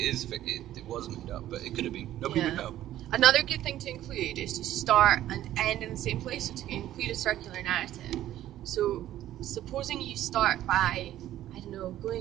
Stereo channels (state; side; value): quieter; left; 13.1 dB